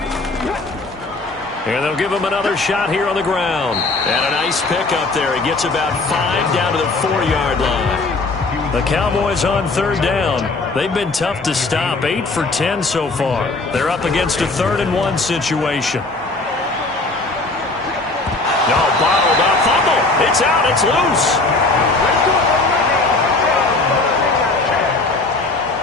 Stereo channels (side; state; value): right; quieter; 3.3 dB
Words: And they'll give him another shot here on the ground. And a nice pickup there. He gets about 5 down to the 4-yard line. The Cowboys on 3rd down. They've been tough to stop. 8 for 10 so far. They're up against a 3rd and 1 situation. No, bottled up. Fumble. It's out. It's loose.